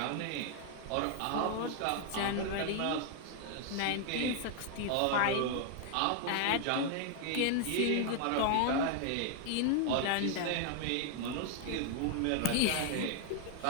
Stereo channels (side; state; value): both; different; correlation 0.00